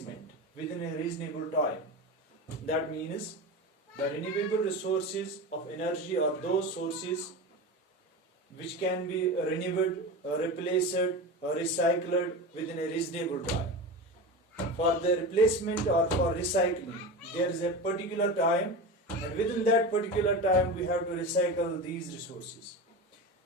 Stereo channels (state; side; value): normal; both; correlation 0.26